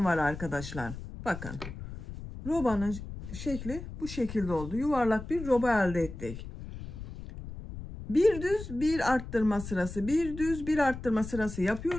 var arkadaşlar. Bakın. Robanın şekli bu şekilde oldu. Yuvarlak bir roba elde ettik. Bir düz bir arttırma sırası, bir düz bir arttırma sırası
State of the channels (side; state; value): left; noise; rumble, 10 dB below the sound